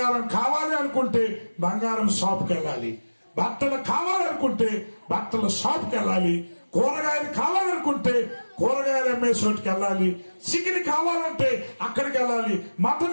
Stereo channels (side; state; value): both; inverted; correlation -1.00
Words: కావాలి అనుకుంటే బంగారం షాప్కి వెళ్ళాలి, బట్టలు కావాలనుకుంటే బట్టల షాప్కి వెళ్ళాలి, కూరగాయలు కావాలనుకుంటే కూరగాయలు అమ్మే చోటుకి వెళ్ళాలి, చికెన్ కావాలంటే అక్కడికి వెళ్ళాలి,